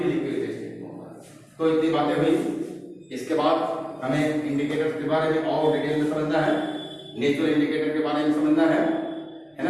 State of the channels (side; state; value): both; identical; correlation 1.00